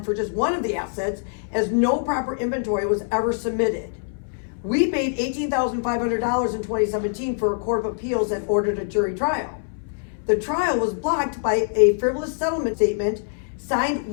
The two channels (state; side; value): silent; right; 63 dB below the other